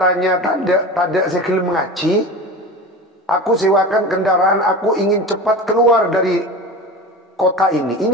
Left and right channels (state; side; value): normal; both; correlation 0.31